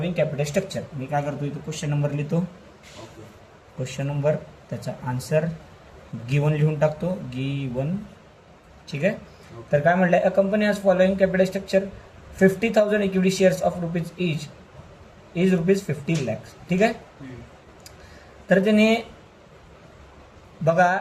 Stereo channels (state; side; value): identical; both; correlation 1.00